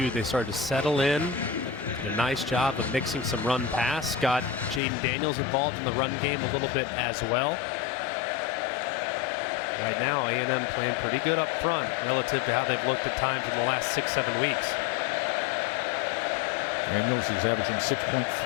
They started to settle in. Did a nice job of mixing some run pass. Got Jaden Daniels involved in the run game a little bit as well. Right now, A&M playing pretty good up front relative to how they've looked at times in the last 6-7 weeks. Daniels is averaging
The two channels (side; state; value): right; drops out; at 4.8 s